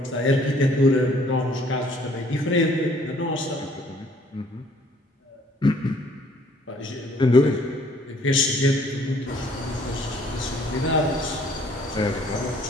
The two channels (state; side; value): normal; both; correlation 0.60